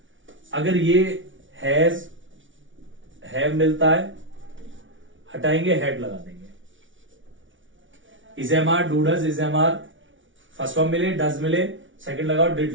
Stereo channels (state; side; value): late; left; 0.56 ms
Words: अगर ये हैज, हैव मिलता है, हटाएंगे, हैड लगा देंगे। Is am are, do does, is am are first form मिले, डज मिले, सेकंड लगाओ,